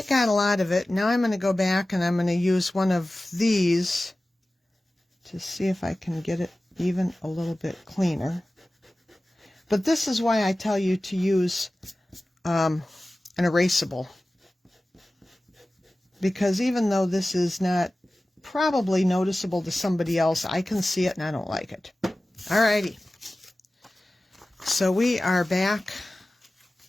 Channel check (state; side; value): normal; both; correlation 0.96